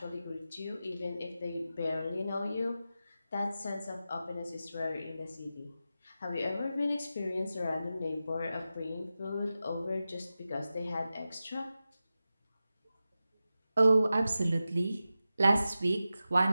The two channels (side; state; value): both; inverted; correlation -0.93